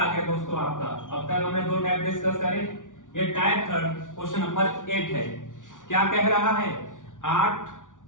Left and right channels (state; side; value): late; right; 0.87 ms